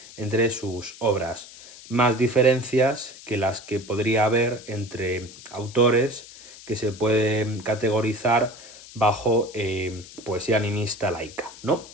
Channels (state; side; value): noise; left; hiss, 18 dB below the sound